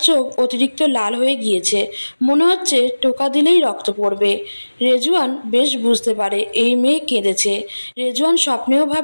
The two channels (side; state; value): both; inverted; correlation -1.00